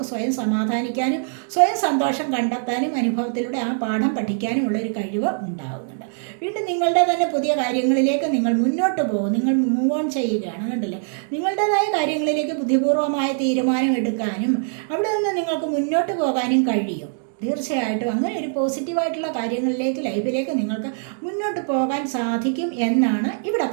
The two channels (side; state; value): left; silent; digital silence